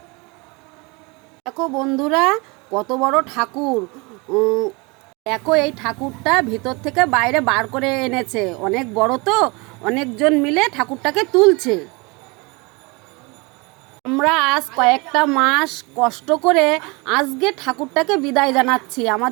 দেখো বন্ধুরা কত বড় ঠাকুর। দেখো এই ঠাকুরটা ভিতর থেকে বাইরে বার করে এনেছে, অনেক বড় তো, অনেকজন মিলে ঠাকুরটাকে তুলছে। আমরা আজ কয়েকটা মাস কষ্ট করে আজকে ঠাকুরটাকে বিদায় জানাচ্ছি।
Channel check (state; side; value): quieter; left; 27.7 dB